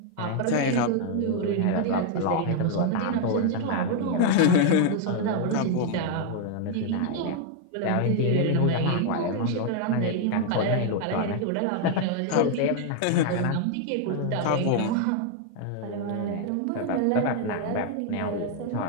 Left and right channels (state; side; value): different; both; correlation 0.00